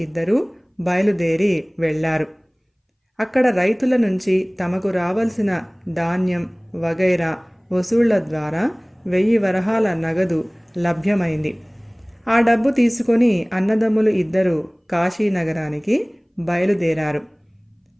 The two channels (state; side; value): identical; both; correlation 1.00